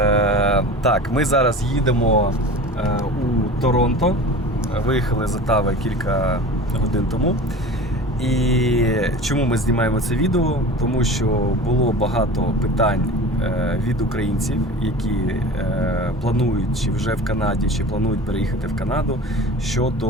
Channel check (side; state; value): both; normal; correlation 0.37